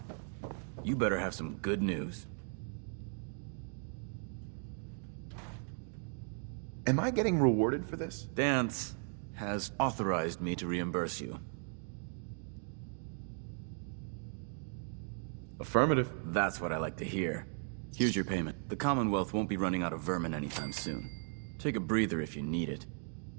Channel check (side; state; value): left; silent; 53 dB below the other